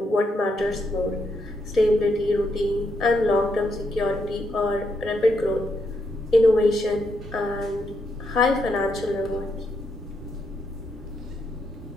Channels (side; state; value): both; normal; correlation 0.79